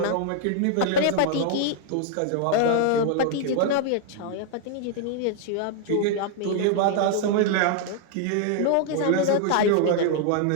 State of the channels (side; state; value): both; different; correlation 0.00